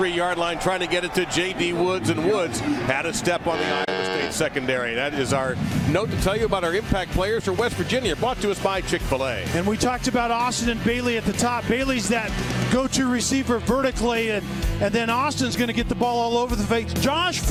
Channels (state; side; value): identical; both; correlation 1.00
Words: line, trying to get it to J.D. Woods, and Woods had a step on the Iowa State secondary. That is our note to tell you about our impact players for West Virginia, brought to us by Chick-fil-A. And we talked about Austin and Bailey at the top. Bailey's that go-to receiver vertically, and then Austin's going to get the ball all over the face. Josh